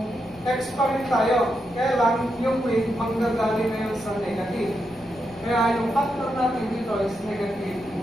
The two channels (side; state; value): left; noise; rumble, 26 dB below the sound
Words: X pa rin tayo. Kaya lang, yung wind, manggagaling na yun sa negative. Kaya yung factor natin dito is negative 1.